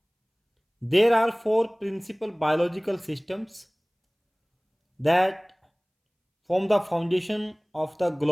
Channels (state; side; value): identical; both; correlation 1.00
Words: there are four principal biological systems that form the foundation of the